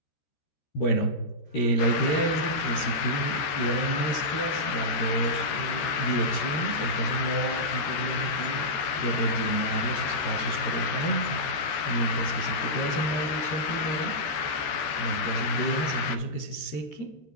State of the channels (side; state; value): right; late; 13 ms